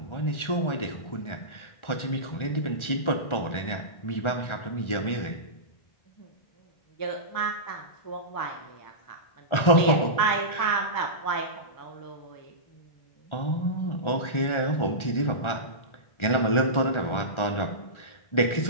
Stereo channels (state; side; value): late; right; 1.4 ms